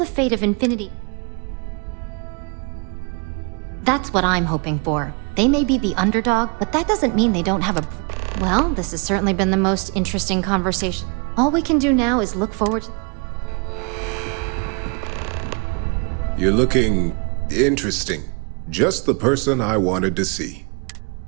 fate of Infinity... That's what I'm hoping for. They may be the underdog, but that doesn't mean they don't have a... Well, this has certainly been the most interesting conversation. All we can do now is look forward to... You're looking interesting. Just the person I wanted to see.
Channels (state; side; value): quieter; left; 34.2 dB